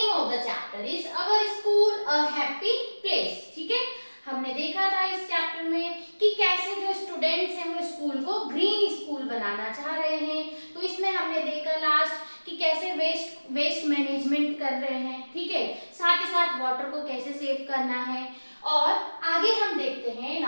of the chapter is our school a happy place. ठीक है, हमने देखा था इस चैप्टर में कि कैसे जो स्टूडेंट्स हैं वो स्कूल को ग्रीन स्कूल बनाना चाह रहे हैं। तो इसमें हमने देखा लास्ट कि कैसे वेस्ट मैनेजमेंट कर रहे हैं, ठीक है, साथ ही साथ वाटर को कैसे सेव करना है। और आगे हम देखते हैं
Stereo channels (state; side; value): inverted; both; correlation -1.00